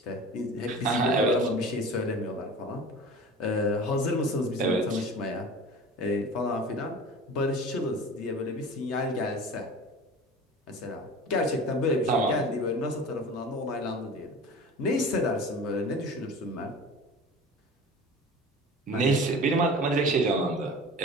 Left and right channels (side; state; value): both; normal; correlation 0.38